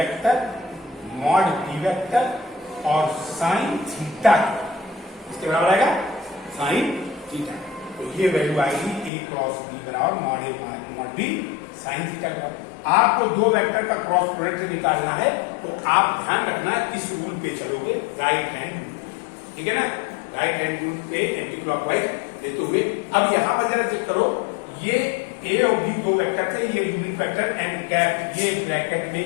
मॉड बी वेक्टर और साइन थीटा, इसके बराबर आएगा साइन थीटा। तो ये वैल्यू आएगी ए क्रॉस बी बराबर mod A mod B sine theta का। आपको दो वेक्टर का क्रॉस प्रोडक्ट निकालना है तो आप ध्यान रखना इस रूल पे चलोगे, राइट हैंड रूल, ठीक है ना, राइट हैंड रूल पे एंटी क्लॉकवाइज लेते हुए। अब यहां पर जरा चेक करो, ये ए और बी दो वेक्टर थे, ये यूनिट वेक्टर एंड कैप ये ब्रैकेट में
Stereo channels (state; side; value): drops out; right; at 9.1 s